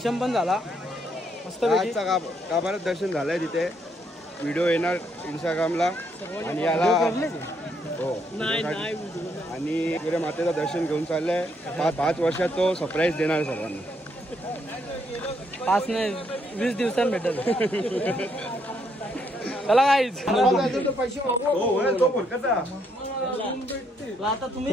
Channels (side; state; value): both; normal; correlation 0.73